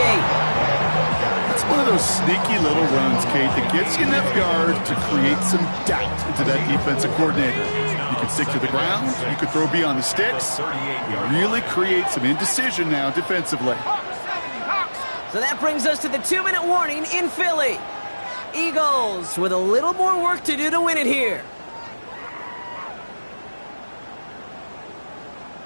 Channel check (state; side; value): inverted; both; correlation -1.00